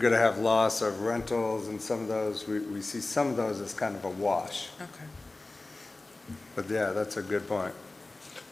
to have loss of rentals and some of those. We see some of those as kind of a wash. okay. But yeah, that's a good point.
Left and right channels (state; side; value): quieter; right; 3.1 dB